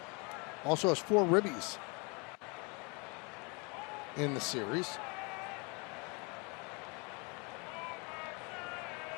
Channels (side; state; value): right; quieter; 31.0 dB